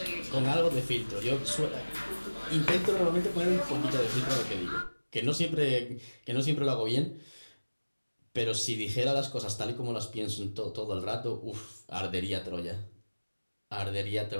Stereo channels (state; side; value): inverted; both; correlation -1.00